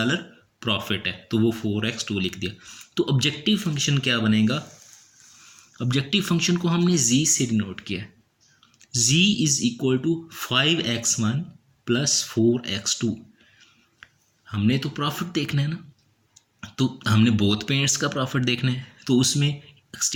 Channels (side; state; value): both; identical; correlation 1.00